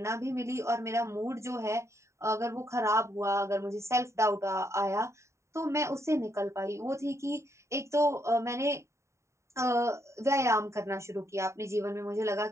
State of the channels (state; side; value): late; left; 0.14 ms